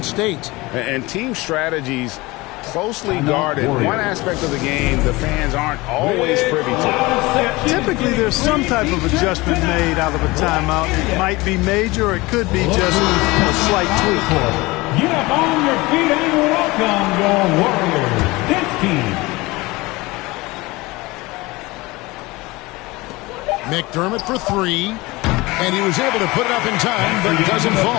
State. And team strategies closely guarded. One aspect of the game the fans aren't always privy to. Typically, there's some type of adjustment made out of a timeout. It might be major, or it could be just a slight tweak. Get up on your feet and welcome your Warriors dance team. McDermott for 3. And he was able to put it up in time, but it doesn't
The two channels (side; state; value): right; quieter; 22.0 dB